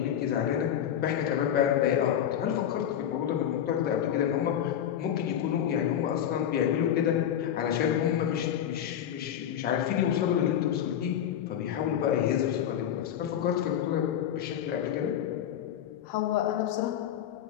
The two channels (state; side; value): quieter; right; 10.0 dB